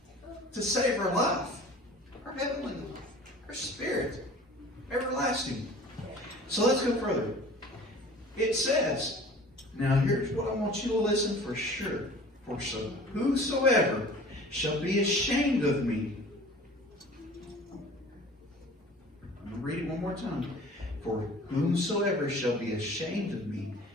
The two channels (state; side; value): normal; both; correlation 0.44